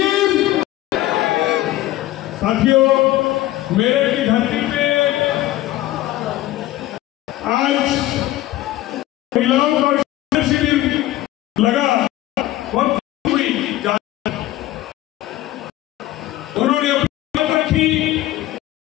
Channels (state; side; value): quieter; right; 15.5 dB